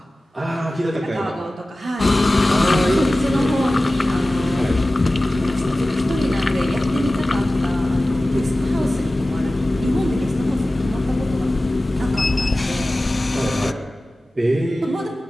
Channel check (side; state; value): both; normal; correlation 0.96